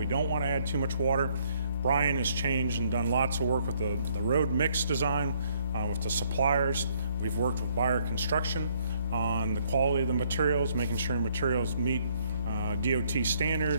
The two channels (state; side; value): inverted; both; correlation -0.67